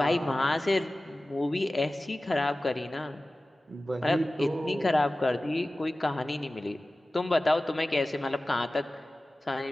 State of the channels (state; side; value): normal; both; correlation 0.97